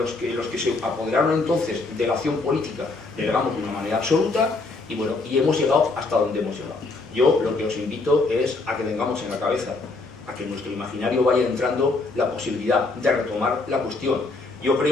se apoderaron entonces de la acción política, delegamos de una manera absoluta y bueno, y hemos llegado hasta donde hemos llegado. Yo lo que os invito es a que tengamos en la cabeza, a que en nuestro imaginario vaya entrando la posibilidad de retomar la cuestión. Yo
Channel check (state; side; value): quieter; right; 3.5 dB